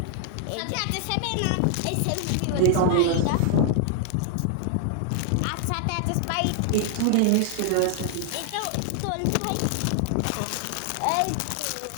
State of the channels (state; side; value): different; both; correlation 0.00